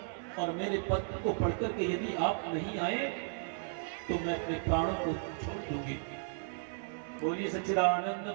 और मेरे पत्र को पढ़कर के यदि आप नहीं आए तो मैं अपने प्राणों को छोड़ दूंगी। बोलिए सच्चिदानंद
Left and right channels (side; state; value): left; silent; 55 dB below the other